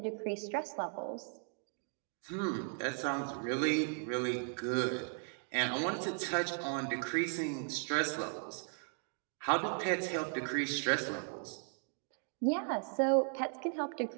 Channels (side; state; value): left; silent; 53 dB below the other